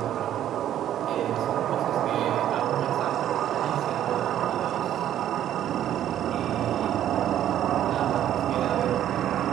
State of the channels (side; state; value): left; quieter; 11.3 dB